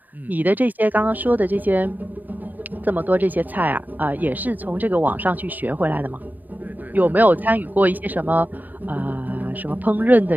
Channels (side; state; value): left; late; 0.087 ms